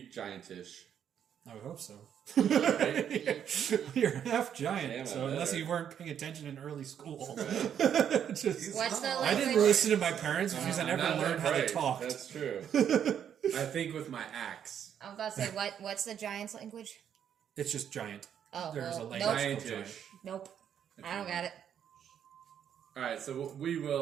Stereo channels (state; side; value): quieter; left; 8.9 dB